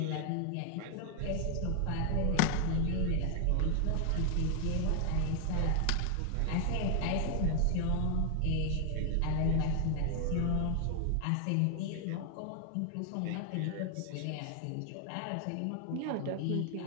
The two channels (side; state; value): both; different; correlation 0.00